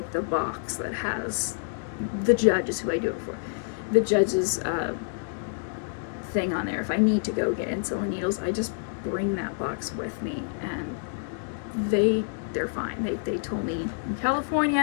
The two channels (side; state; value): right; silent; digital silence